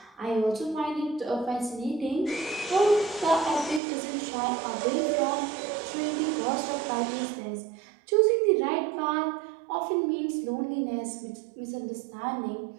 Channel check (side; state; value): left; drops out; at 3.8 s